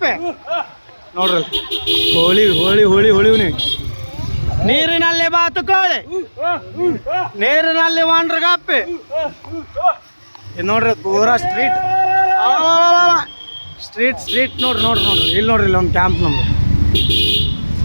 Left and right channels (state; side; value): inverted; both; correlation -1.00